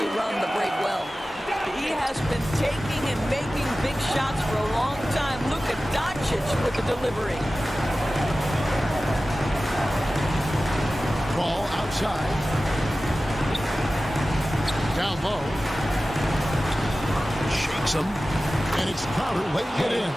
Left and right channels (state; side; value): normal; both; correlation 0.96